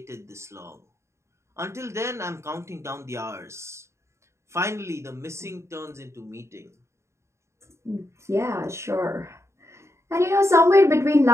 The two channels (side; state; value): left; late; 0.14 ms